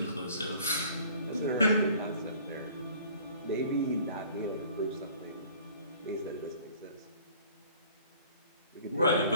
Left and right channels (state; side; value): inverted; both; correlation -0.51